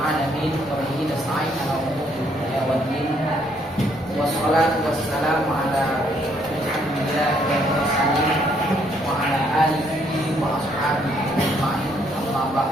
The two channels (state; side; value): normal; both; correlation 0.69